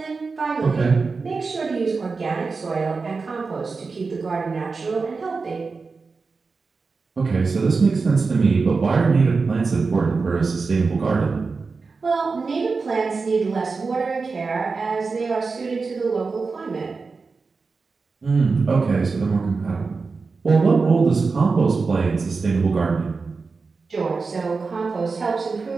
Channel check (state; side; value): quieter; left; 4.4 dB